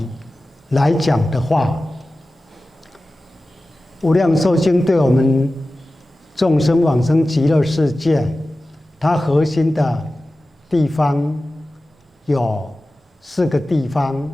来讲的话，无量寿经对我们众生往生极乐世界，它核心的地方有4个地方，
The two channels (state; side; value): normal; both; correlation 0.95